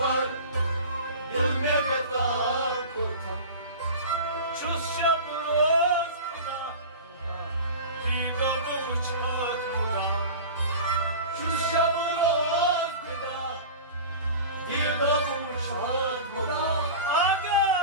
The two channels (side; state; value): both; inverted; correlation -0.34